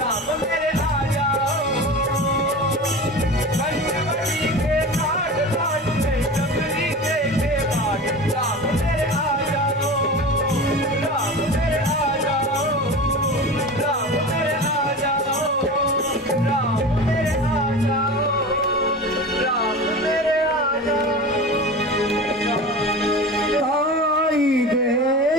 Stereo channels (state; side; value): normal; both; correlation 0.32